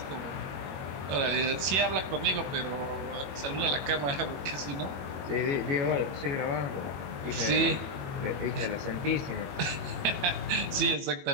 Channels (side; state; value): left; late; 21 ms